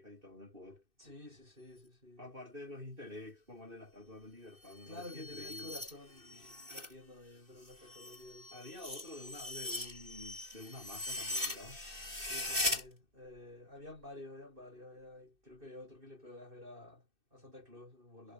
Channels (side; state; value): left; late; 2.6 ms